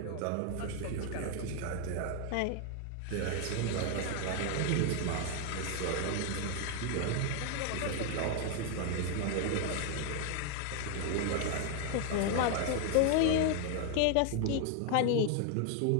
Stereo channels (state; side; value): different; both; correlation 0.00